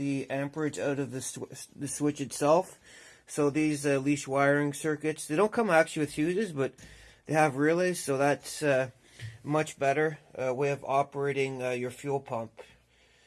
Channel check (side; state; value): both; identical; correlation 1.00